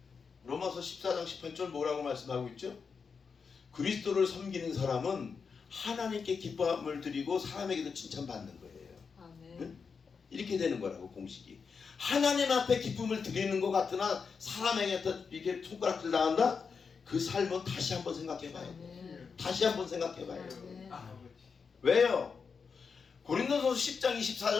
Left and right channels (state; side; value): quieter; right; 5.6 dB